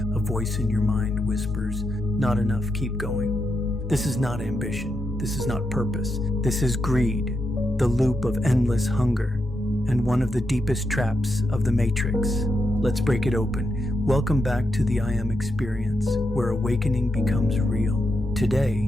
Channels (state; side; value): normal; both; correlation 0.84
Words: voice in your mind whispers, "Not enough, keep going." This is not ambition. This is not purpose. This is greed, the loop of endless hunger, and one of the deepest traps of the Matrix. Let's break it open. Welcome back to the I Am Experience, where awakening becomes real.